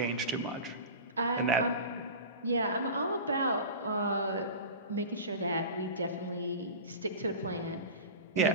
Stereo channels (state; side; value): inverted; both; correlation -0.32